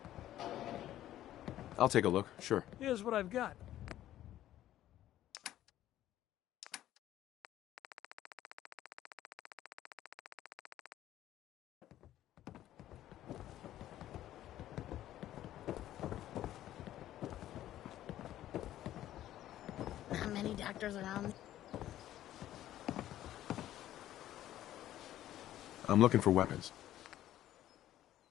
I'll take a look, sure. Here's what I've got. Not many doctors around. I'm looking for weapons.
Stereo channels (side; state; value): right; quieter; 13.0 dB